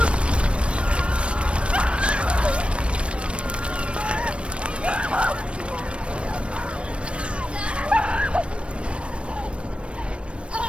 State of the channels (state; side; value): late; left; 0.059 ms